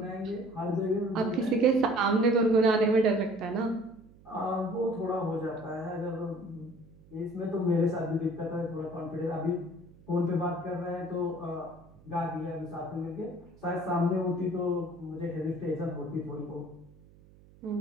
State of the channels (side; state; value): right; noise; hum, 25 dB below the sound